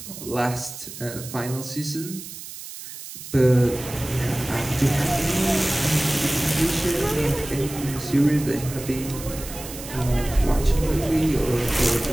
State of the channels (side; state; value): right; noise; hiss, 12 dB below the sound